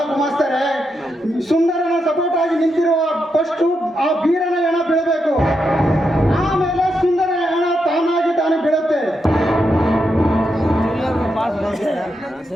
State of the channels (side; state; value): both; normal; correlation 0.84